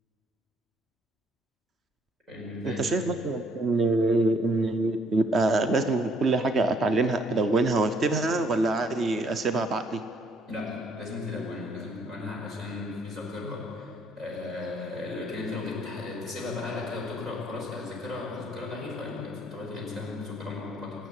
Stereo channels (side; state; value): both; normal; correlation 0.65